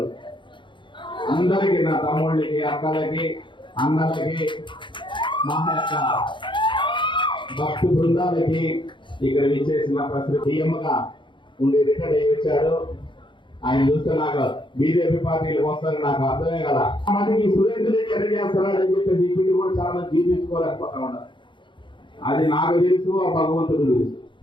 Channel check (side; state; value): right; late; 0.23 ms